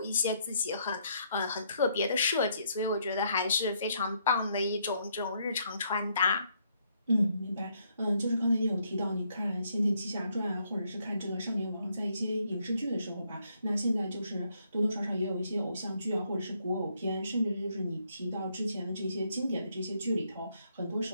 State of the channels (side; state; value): both; inverted; correlation -0.73